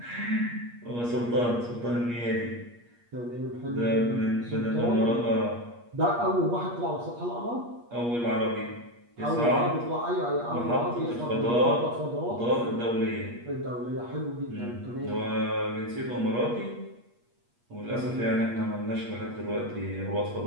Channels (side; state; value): left; late; 8.4 ms